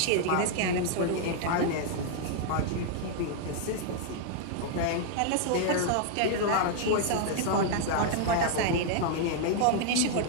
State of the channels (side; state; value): both; different; correlation -0.01